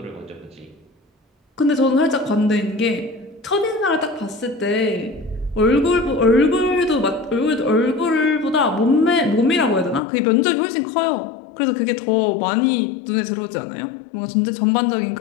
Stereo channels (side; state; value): right; drops out; at 10.0 s